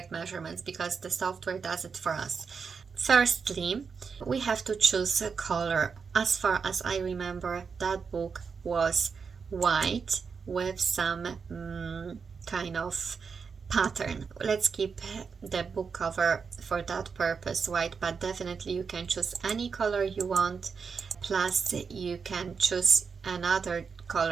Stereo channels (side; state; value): left; quieter; 5.7 dB